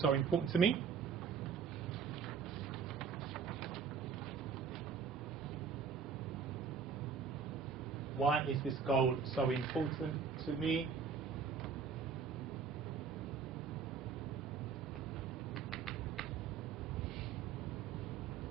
important to me? Why is this goal so important to me?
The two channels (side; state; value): left; quieter; 6.1 dB